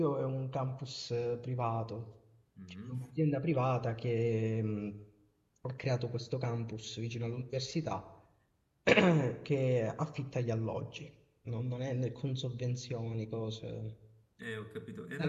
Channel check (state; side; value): identical; both; correlation 1.00